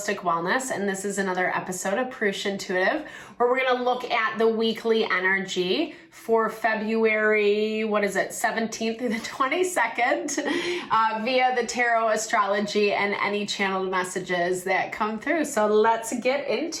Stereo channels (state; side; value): identical; both; correlation 1.00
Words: Wellness, and this is another episode of Purusha Intuitive, where we're going to look at the weekly energy for February, 17th through the 22nd, via the tarot, astrology, and any channeled messages that come through. So let's get